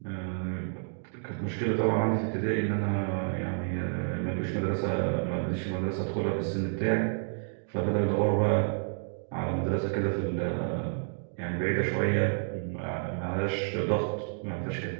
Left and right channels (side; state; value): left; silent; 58 dB below the other